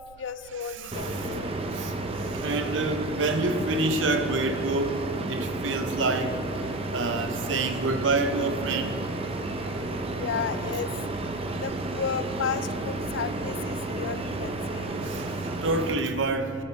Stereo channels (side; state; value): right; noise; rumble, 23 dB below the sound